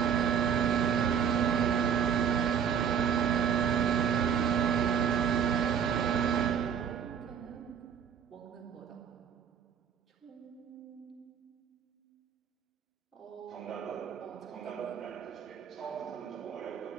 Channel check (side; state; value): left; quieter; 7.7 dB